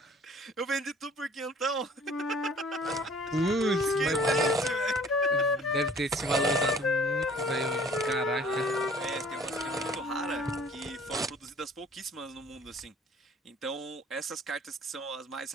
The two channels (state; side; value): normal; both; correlation 0.53